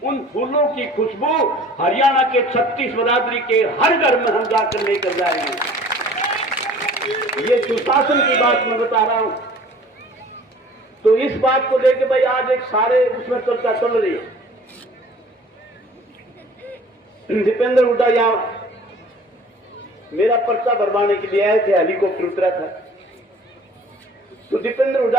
उन फूलों की खुशबू हरियाणा के 36 बरादरी के हर घर में हम जाकर लेकर जाएंगे। ये सुशासन की बात मैं बता रहा हूं। तो इस बात को लेकर भाई आज एक सारे उसमें चर्चा चल रही है। दीपेंद्र हुड्डा यहां मेरा पर्चा भरवाने के लिए आए थे, हेलीकॉप्टर उतरा था। तो दीपेंद्र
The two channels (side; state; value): both; normal; correlation 0.49